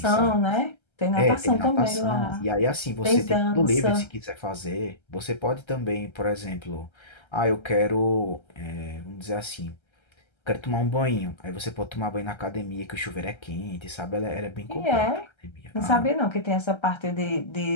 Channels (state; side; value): late; right; 1.3 ms